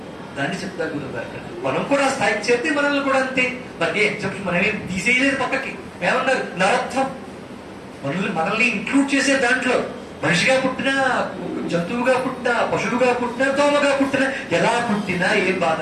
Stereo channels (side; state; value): both; identical; correlation 1.00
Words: దాన్ని చెప్తారు గురుగారు. మనం కూడా స్థాయికి చేస్తే మనల్ని కూడా అంతే. మనకి ఎగ్జాంపుల్ మనమేం తీసేయలేదు పక్కకి. ఏమన్నారు? నరత్వం. మనల్ని ఇంక్లూడ్ చేసే దాంట్లో మనిషిగా పుట్టినా, జంతువుగా పుట్టినా, పశువుగా పుట్టినా, దోమగా పుట్టినా, ఎలా పుట్టినా ఏం బాధ